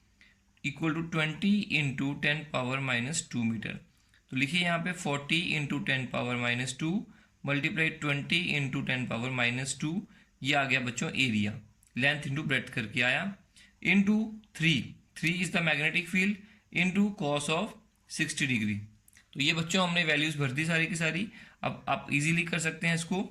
equal to 20 into 10 power minus 2 metre. तो लिखिए यहाँ पे 40 into 10 power minus 2 multiply 20 into 10 power minus 2। ये आ गया बच्चों एरिया, लेंथ इंटू ब्रेड्थ करके आया, into 3 is the magnetic field, into cos of 60 degree. तो ये बच्चों हमने वैल्यूज भर दी सारी की सारी। अब आप इजीली कर सकते हैं इसको।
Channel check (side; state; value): both; identical; correlation 1.00